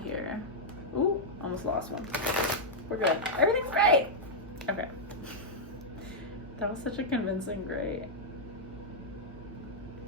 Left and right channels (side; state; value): both; normal; correlation -0.06